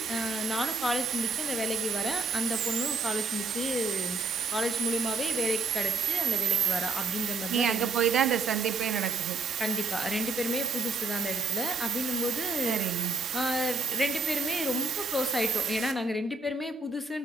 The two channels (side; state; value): left; quieter; 3.8 dB